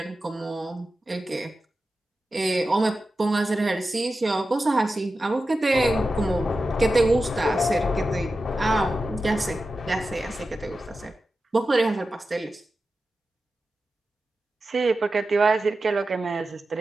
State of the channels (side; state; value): both; normal; correlation 0.92